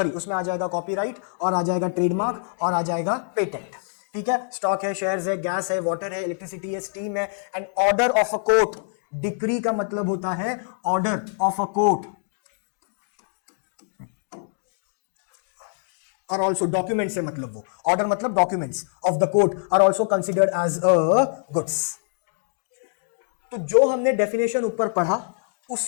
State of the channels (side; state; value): right; silent; digital silence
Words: उसमें आ जाएगा कॉपीराइट, और आ जाएगा ट्रेडमार्क, और आ जाएगा पेटेंट। ठीक है, स्टॉक है, शेयर्स है, गैस है, वाटर है, इलेक्ट्रिसिटी है, स्टीम है। And order of a court, decree का मतलब होता है ऑर्डर ऑफ अ कोर्ट, और ऑल्सो डॉक्यूमेंट से मतलब वो ऑर्डर मतलब documents of the court are also considered as a goods. तो जो हमने डेफिनेशन ऊपर पढ़ा